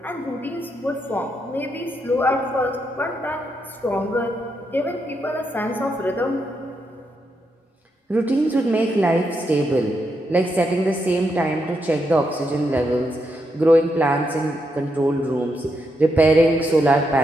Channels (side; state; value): both; normal; correlation 0.81